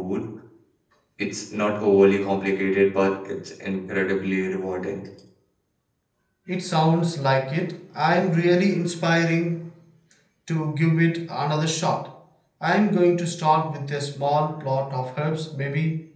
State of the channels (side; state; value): both; identical; correlation 1.00